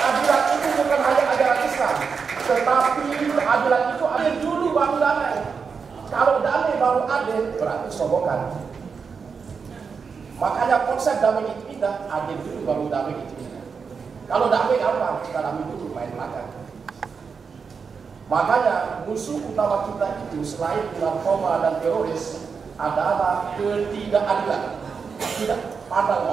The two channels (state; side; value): quieter; left; 5.6 dB